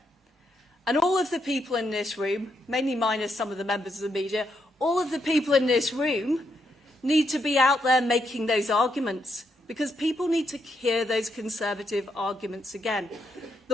And all of the people in this room, mainly minus some of the members of the media, all of the people in this room need to be out there making those arguments because people need to hear those Conservative arguments again.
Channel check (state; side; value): normal; both; correlation 0.79